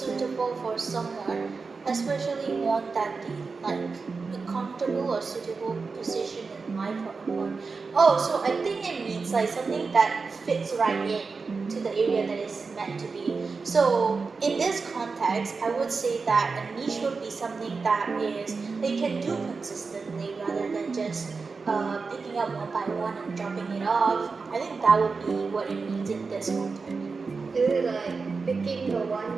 for someone, especially one that they like. A comfortable or suitable position in life or employment. Oh, so I think it means like something that fits right in to the area that is meant to be. So in this context, I would say that a niche would be something that is they can do consistently rather than just picking up one by one and dropping it off. I think that would be what it means in this context. Is it like picking the one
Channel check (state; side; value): quieter; left; 4.5 dB